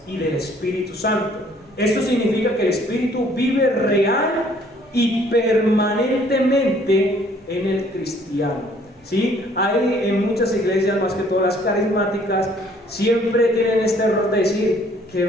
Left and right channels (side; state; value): both; normal; correlation 0.60